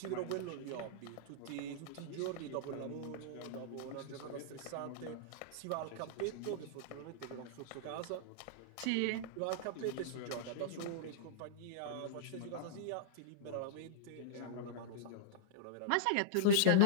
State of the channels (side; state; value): both; different; correlation -0.02